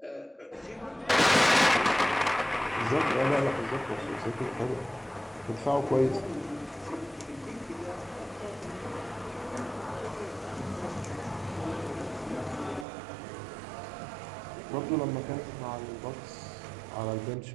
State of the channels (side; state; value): left; drops out; at 12.9 s